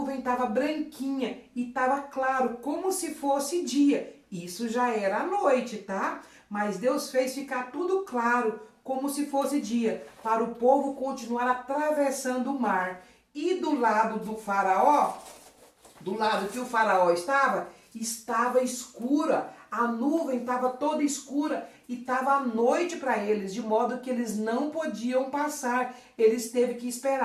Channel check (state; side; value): identical; both; correlation 1.00